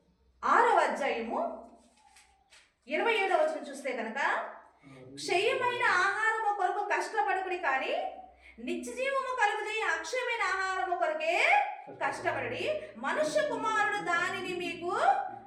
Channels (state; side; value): identical; both; correlation 1.00